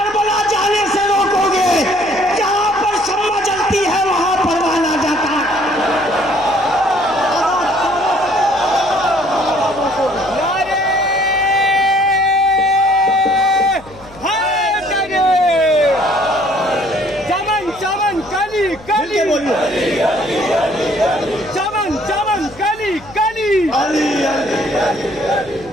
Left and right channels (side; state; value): left; noise; hum, 22 dB below the sound